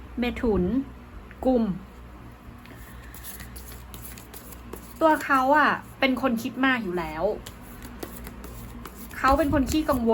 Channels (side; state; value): both; identical; correlation 1.00